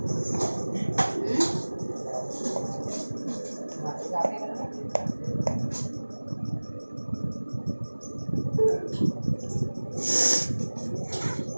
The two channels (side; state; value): both; inverted; correlation -1.00